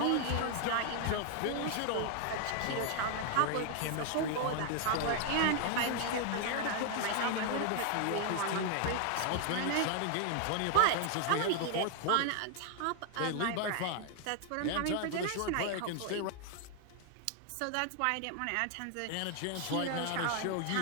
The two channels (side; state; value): both; different; correlation 0.00